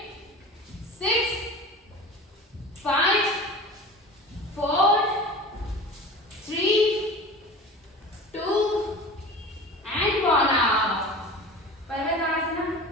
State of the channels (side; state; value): both; normal; correlation 0.36